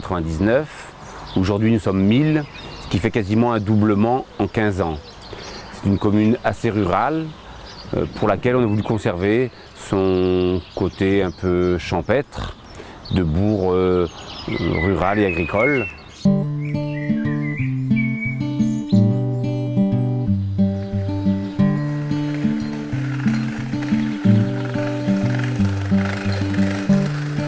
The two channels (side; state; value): both; identical; correlation 1.00